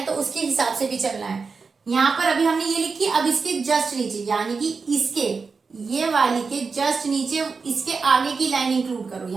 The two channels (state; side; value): quieter; left; 4.8 dB